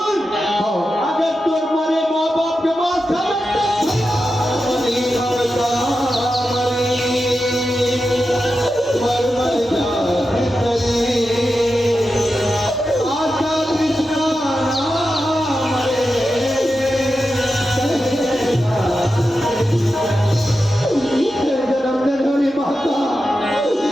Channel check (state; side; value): normal; both; correlation 0.90